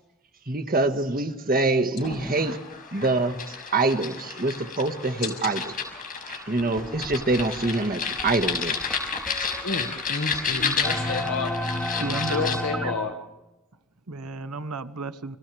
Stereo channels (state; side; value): normal; both; correlation 0.30